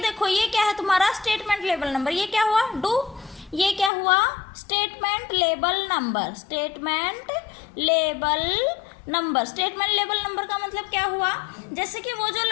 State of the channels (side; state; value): right; drops out; at 3.9 s